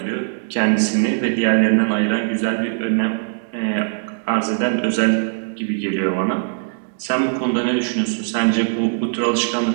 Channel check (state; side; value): silent; left; digital silence